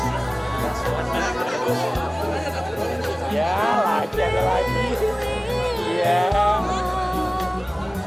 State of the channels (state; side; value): normal; both; correlation 0.98